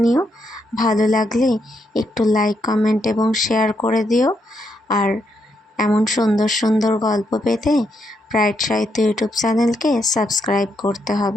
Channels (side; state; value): both; normal; correlation 0.79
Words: ভালো লাগলে একটু লাইক, কমেন্ট এবং শেয়ার করে দিও। আর এমন সুন্দর সুন্দর গল্প পেতে ব্রাইট সাহিত্য ইউটিউব চ্যানেলকে সাবস্ক্রাইব করতে